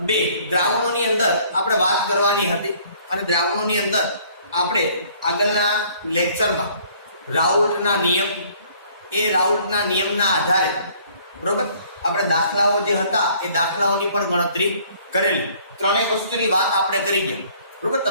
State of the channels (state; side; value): inverted; both; correlation -0.58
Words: 2 દ્રાવણોની અંદર આપણે વાત કરવાની હતી અને દ્રાવણોની અંદર આપણે આગળના લેક્ચરમાં રાઉલ્ટના નિયમ, એ રાઉલ્ટના નિયમના આધારે બરોબર આપણે દાખલાઓ જે હતા એ દાખલાઓની પણ ગણતરી કરેલી. ત્રણેય વસ્તુની વાત આપણે કરી ગયા બરોબર.